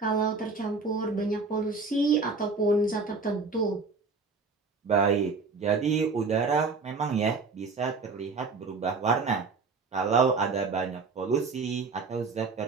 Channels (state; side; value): quieter; left; 4.4 dB